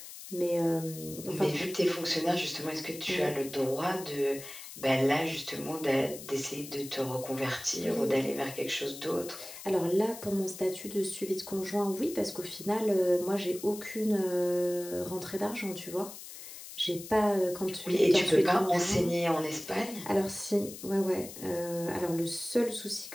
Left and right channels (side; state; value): left; noise; hiss, 13 dB below the sound